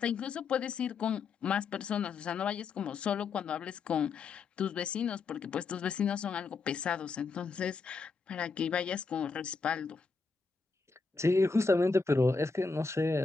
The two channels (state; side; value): quieter; right; 4.5 dB